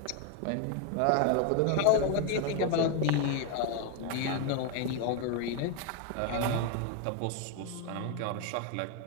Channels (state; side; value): different; both; correlation 0.01